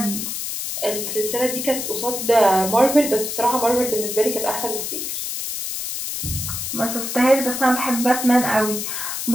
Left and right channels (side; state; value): left; noise; hiss, 4 dB below the sound